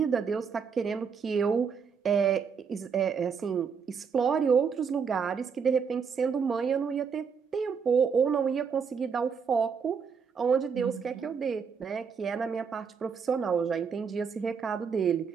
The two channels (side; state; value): left; quieter; 6.2 dB